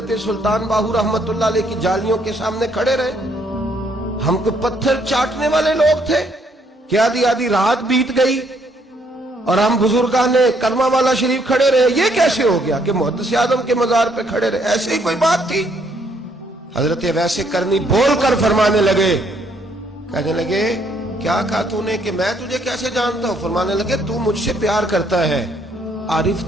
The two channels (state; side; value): normal; both; correlation 0.69